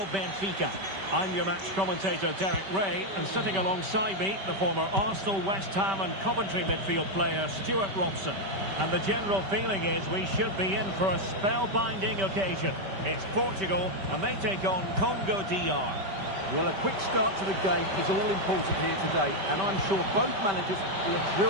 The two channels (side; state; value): left; late; 5.2 ms